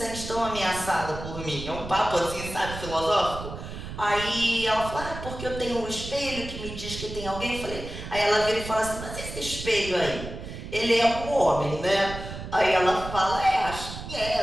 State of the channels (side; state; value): right; noise; rumble, 9 dB below the sound